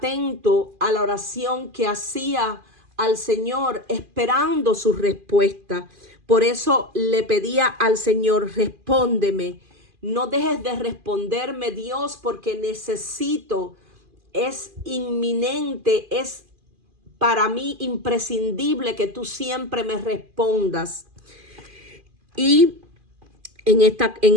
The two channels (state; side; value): late; left; 2.4 ms